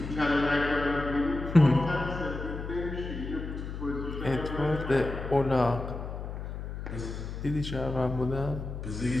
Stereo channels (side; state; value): left; noise; hum, 7 dB below the sound